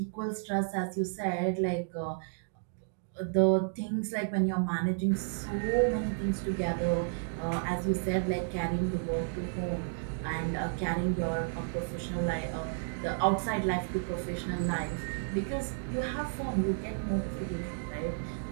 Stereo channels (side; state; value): left; silent; digital silence